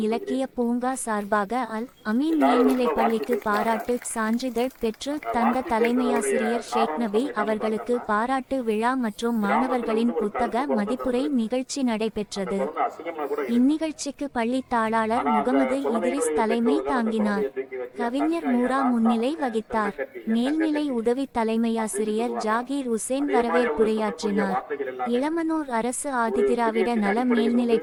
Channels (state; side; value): identical; both; correlation 1.00